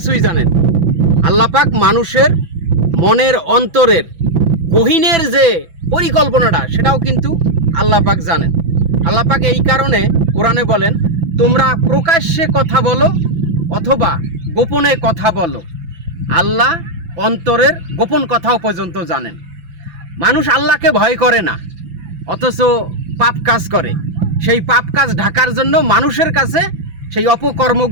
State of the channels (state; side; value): late; left; 6.0 ms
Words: জানেন। আল্লাহ পাক মানুষের মনের অন্তরের গহীনের যে পরিকল্পনাটা সেটাও কিন্তু আল্লাহ পাক জানেন। আল্লাহ পাক এই কারণে কোরআনে বলেন, তোমরা প্রকাশ্যে কথা বলো অথবা গোপনে কথা বলো, আল্লাহ অন্তরের গোপন কথাও পর্যন্ত জানেন। মানুষ আল্লাহকে ভয় করে না, অথচ পাপ কাজ করে। সেই পাপ কাজ ঢাকার জন্য মানুষের কাছে সেই